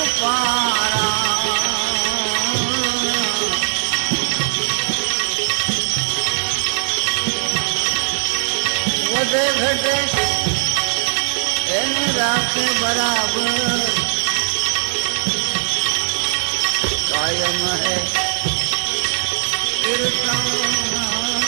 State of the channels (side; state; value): left; silent; digital silence